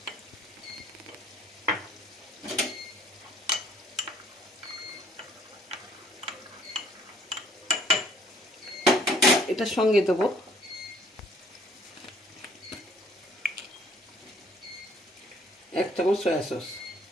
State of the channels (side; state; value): both; normal; correlation 0.61